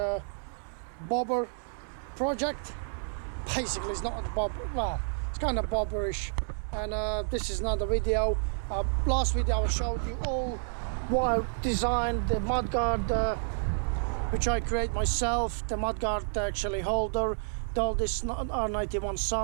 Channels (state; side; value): silent; left; 58 dB below the other